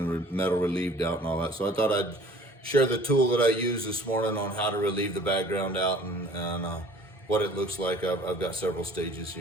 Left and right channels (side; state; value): both; normal; correlation 0.50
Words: the metal relieved out and all that. So I thought I'd share the tool that I used this morning on how to relieve the background out and what it looks like. I've got several stages